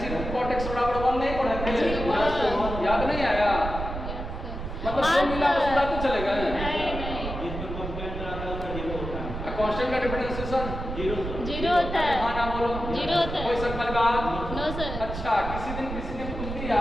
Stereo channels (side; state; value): right; noise; rumble, 6 dB below the sound